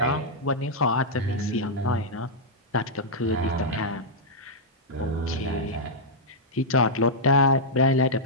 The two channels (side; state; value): both; normal; correlation -0.07